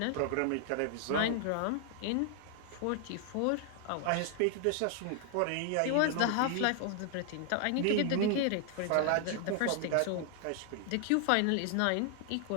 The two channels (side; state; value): both; different; correlation 0.00